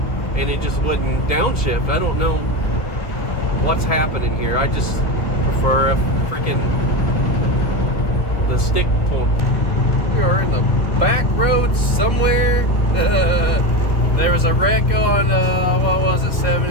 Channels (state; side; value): late; right; 2.1 ms